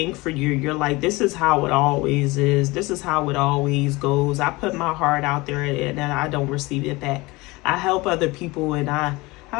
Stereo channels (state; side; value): quieter; right; 22.5 dB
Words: for you. You're like, this is how it always is. This is how it always goes. I put my heart out there and I don't receive it back. I help other people and I